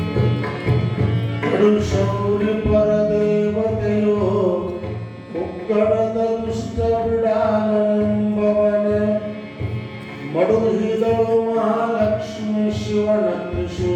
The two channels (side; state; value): both; identical; correlation 1.00